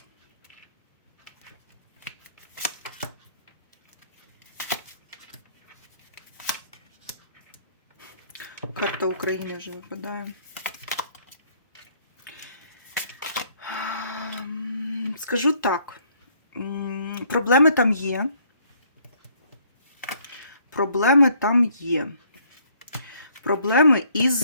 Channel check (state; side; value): inverted; both; correlation -0.64